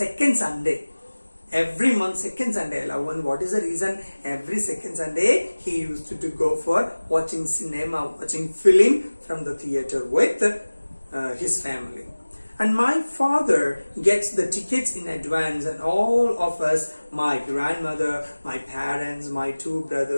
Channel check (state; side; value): inverted; both; correlation -1.00